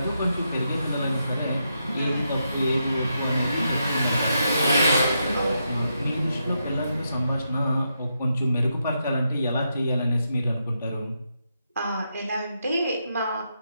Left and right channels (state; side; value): inverted; both; correlation -0.83